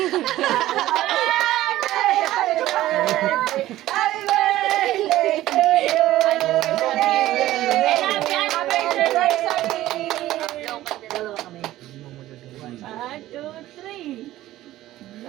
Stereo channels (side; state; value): left; quieter; 15.1 dB